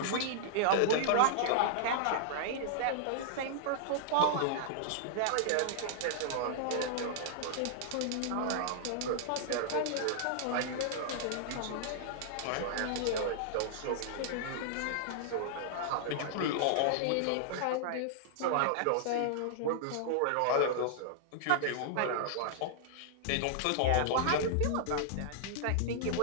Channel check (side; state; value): both; different; correlation -0.01